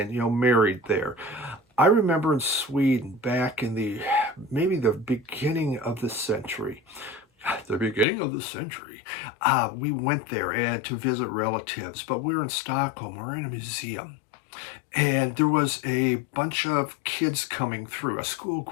married there. I remember in Sweden back in maybe the beginning of the century. We went there and to visit relatives, but we were in Stockholm. We were in a museum. And there was a bunch of kids coming through, a school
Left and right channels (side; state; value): right; drops out; at 8.1 s